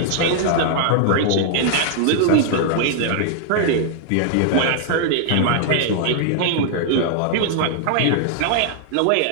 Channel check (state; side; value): different; both; correlation -0.01